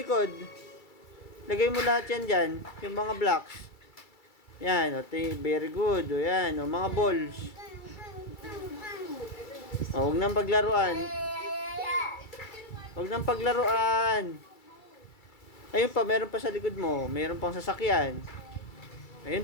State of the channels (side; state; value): right; late; 2.3 ms